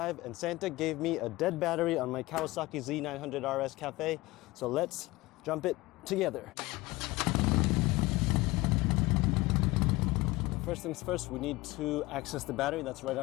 and Santa gave me a dead battery on my Kawasaki Z900 RS Cafe. So let's jump it together. First things first, we need to access the battery that's right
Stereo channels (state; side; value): quieter; right; 20.3 dB